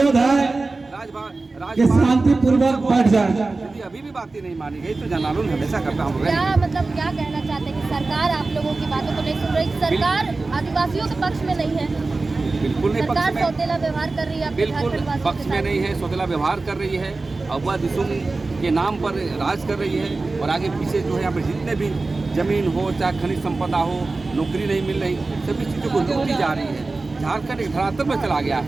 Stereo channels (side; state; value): left; quieter; 3.5 dB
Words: है कि शांतिपूर्वक बैठ जाए। यदि अभी भी बातें नहीं मानी गई तो जन आंदोलन हमेशा करता हम क्या मतलब क्या कहना चाहते हैं कि सरकार आप लोगों की बातों को नहीं सुन रही, सरकार आदिवासियों के पक्ष में नहीं है, बिल्कुल नहीं पक्ष सरकार में, सौतेला व्यवहार कर रही है, बिल्कुल पक्ष में नहीं है, सौतेला व्यवहार कर रही है, अगवा दिसुम के नाम पर राज कर रही है। और आगे पीछे जो है यहाँ पर जितने भी जमीन हो, चाहे खनिज संपदा हो, नौकरी नहीं मिल रही, सभी चीज़ों को लूटी जा रही है। झारखंड एक धरातल पर चला गया